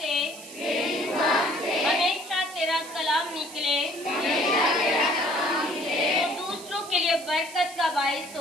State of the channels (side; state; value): right; noise; hiss, 15 dB below the sound